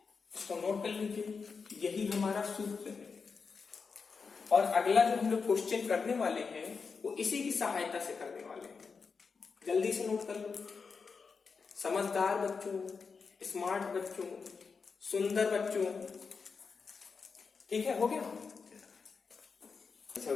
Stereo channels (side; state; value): right; quieter; 5.2 dB